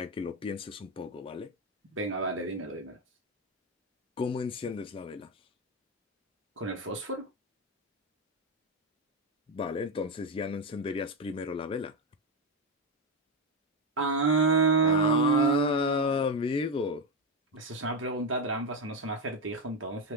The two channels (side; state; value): both; normal; correlation 0.10